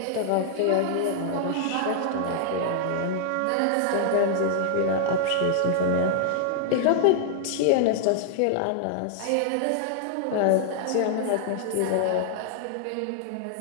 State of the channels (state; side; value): different; both; correlation -0.01